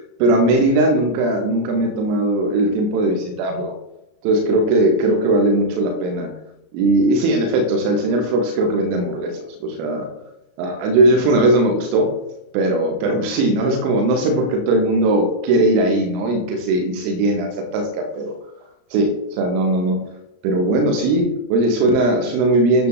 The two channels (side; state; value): left; late; 34 ms